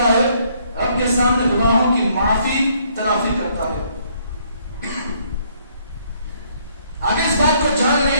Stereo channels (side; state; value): both; inverted; correlation -0.67